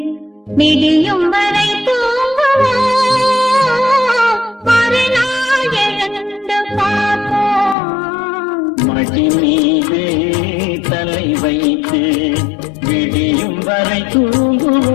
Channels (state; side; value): drops out; right; at 7.8 s